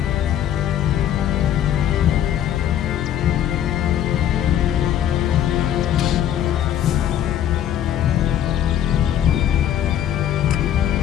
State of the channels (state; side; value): quieter; right; 10.5 dB